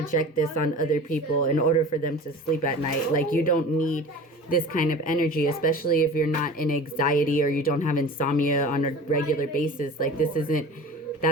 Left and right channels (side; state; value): both; normal; correlation 0.38